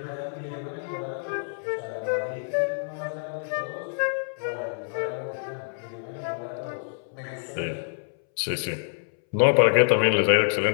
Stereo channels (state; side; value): silent; right; 60 dB below the other